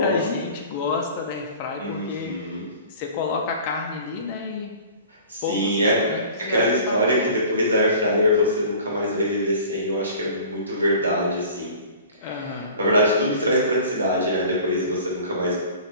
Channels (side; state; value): both; inverted; correlation -0.44